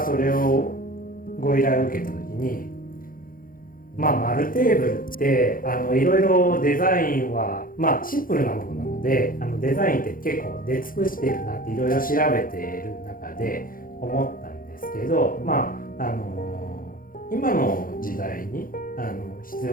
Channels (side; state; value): right; late; 0.41 ms